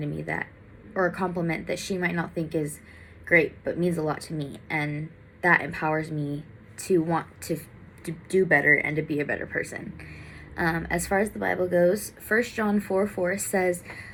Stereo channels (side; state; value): both; identical; correlation 1.00